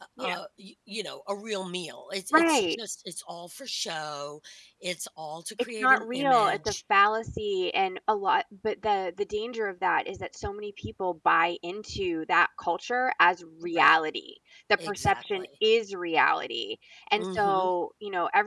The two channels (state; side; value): identical; both; correlation 1.00